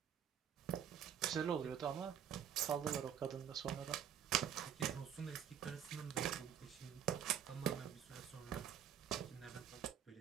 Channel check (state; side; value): quieter; left; 9.1 dB